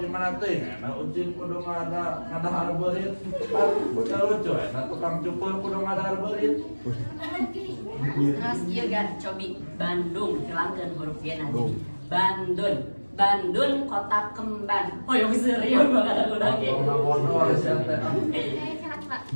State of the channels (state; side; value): inverted; both; correlation -1.00